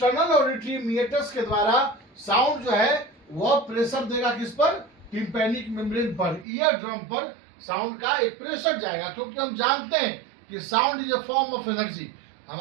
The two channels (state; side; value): drops out; left; at 6.5 s